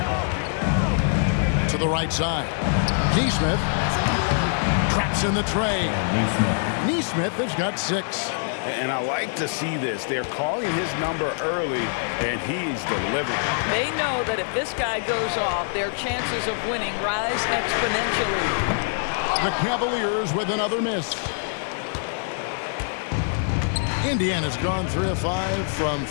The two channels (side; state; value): right; silent; digital silence